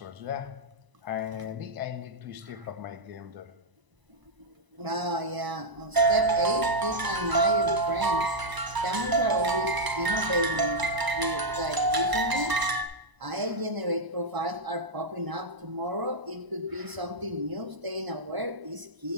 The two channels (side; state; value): left; late; 1.0 ms